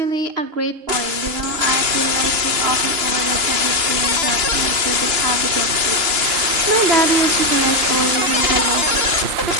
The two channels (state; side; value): late; left; 3.0 ms